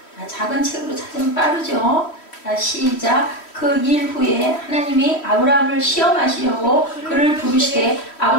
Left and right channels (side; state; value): right; late; 3.1 ms